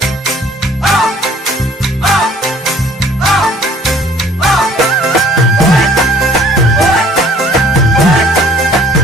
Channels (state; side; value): normal; both; correlation 0.55